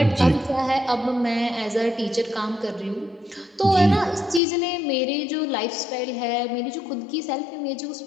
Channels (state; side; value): drops out; right; at 4.4 s